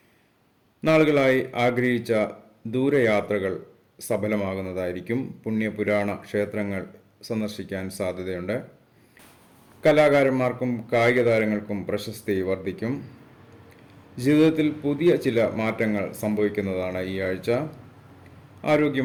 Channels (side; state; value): both; identical; correlation 1.00